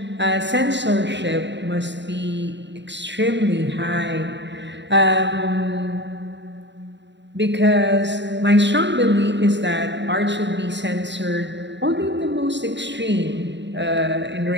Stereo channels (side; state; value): left; late; 0.52 ms